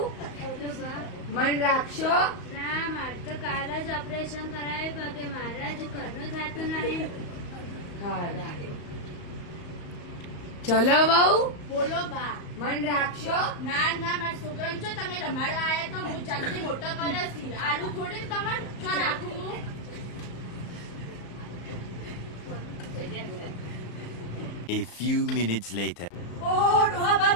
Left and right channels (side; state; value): right; late; 34 ms